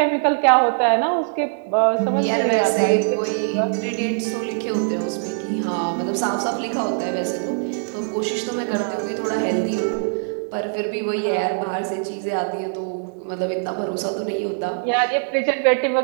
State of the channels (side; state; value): left; silent; digital silence